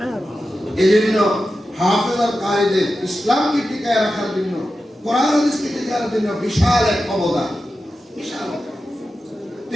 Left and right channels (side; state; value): both; normal; correlation 0.92